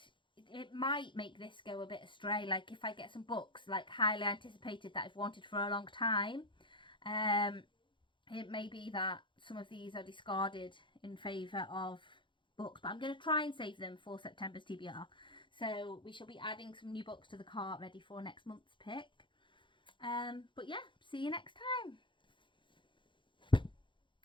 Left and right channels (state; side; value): late; right; 0.23 ms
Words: it might make this go a bit astray. Like if I get some books like highly anticipated that I've wanted for a long time, it may be that some of these are discarded in favour of books, but I'm going to try and save them for September's TBR. So we shall be adding some new books to the cart ready for next month's pick. But yeah, see you next time.